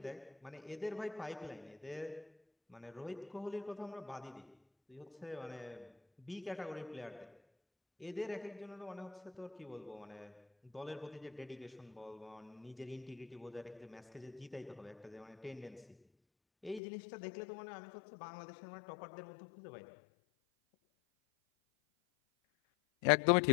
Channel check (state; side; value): drops out; right; at 16.8 s